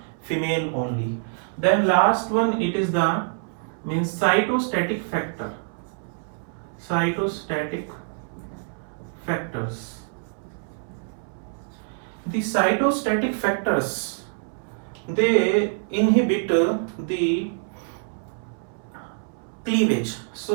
female only. Then last one, it is the cytostatic factor. Cytostatic factors. The cytostatic factors, they inhibit the cleavage.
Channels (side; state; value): left; silent; 61 dB below the other